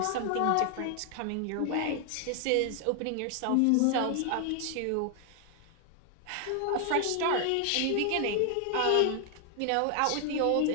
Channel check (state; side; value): different; both; correlation 0.00